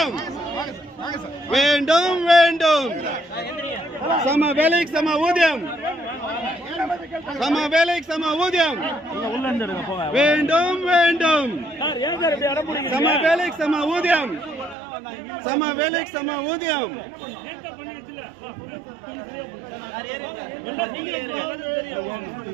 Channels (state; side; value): drops out; left; at 14.8 s